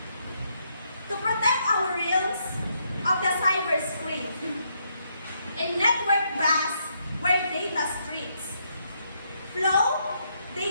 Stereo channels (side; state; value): both; inverted; correlation -0.76